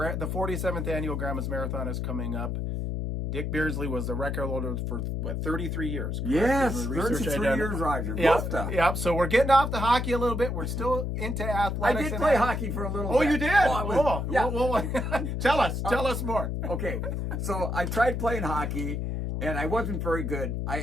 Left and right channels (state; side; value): noise; left; hum, 2 dB below the sound